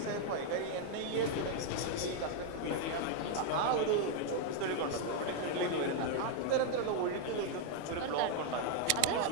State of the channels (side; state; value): both; different; correlation 0.00